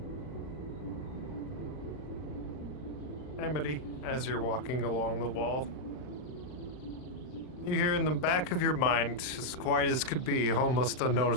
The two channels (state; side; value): late; right; 39 ms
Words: Amity, as you're walking along the wall, you hear in the back of your mind, as quiet as could be, almost